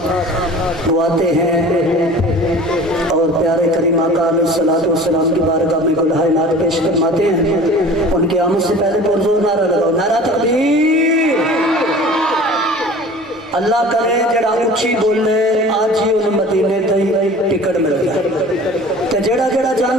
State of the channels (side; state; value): both; normal; correlation 0.42